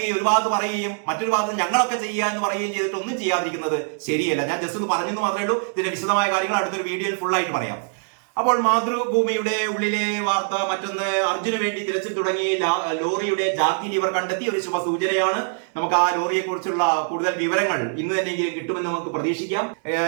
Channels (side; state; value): left; silent; digital silence